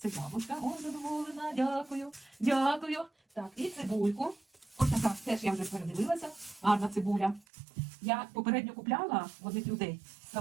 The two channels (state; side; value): drops out; left; at 7.5 s